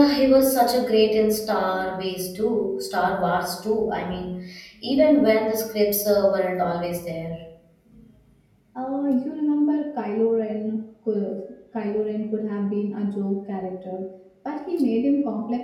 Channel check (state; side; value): identical; both; correlation 1.00